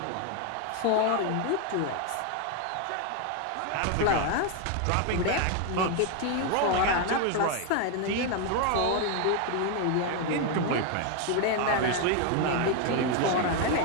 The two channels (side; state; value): both; different; correlation 0.01